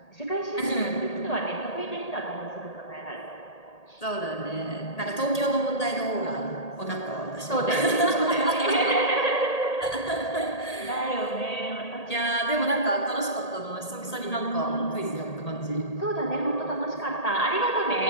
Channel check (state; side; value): late; right; 1.8 ms